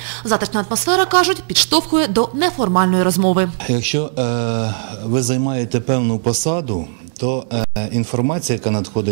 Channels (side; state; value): left; silent; digital silence